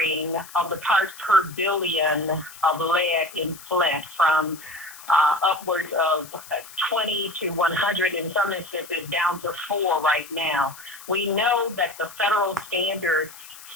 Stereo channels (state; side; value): noise; left; hiss, 17 dB below the sound